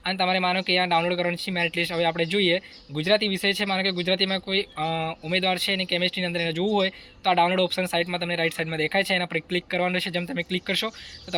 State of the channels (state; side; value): identical; both; correlation 1.00